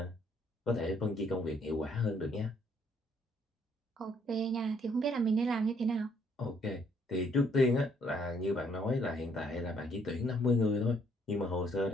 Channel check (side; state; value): both; normal; correlation 0.67